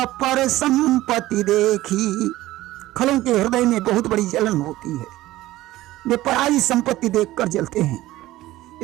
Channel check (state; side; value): quieter; left; 16.4 dB